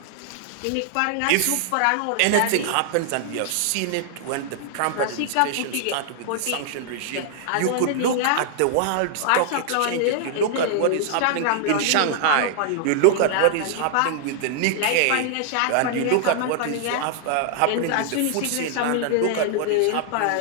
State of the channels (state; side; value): different; both; correlation 0.00